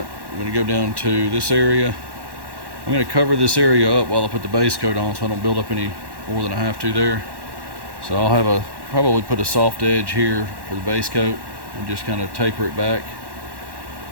I'm going to go down to this area. I'm going to cover this area up while I put the base coat on so I don't build up any more than I have to there. So I'll have probably put a soft edge here for the base coat and just kind of taper it back.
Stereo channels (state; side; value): late; left; 1.1 ms